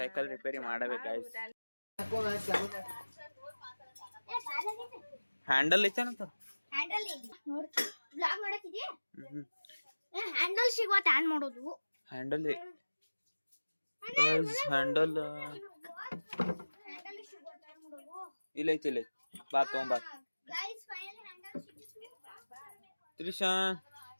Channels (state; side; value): inverted; both; correlation -1.00